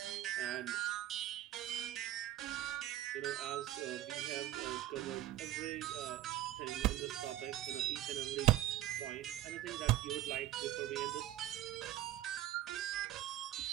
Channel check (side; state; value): left; quieter; 14.0 dB